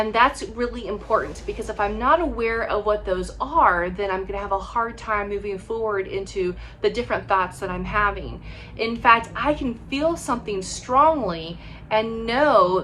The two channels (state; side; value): identical; both; correlation 1.00